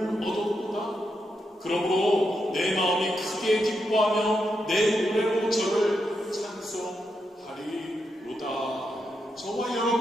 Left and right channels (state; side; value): normal; both; correlation 0.84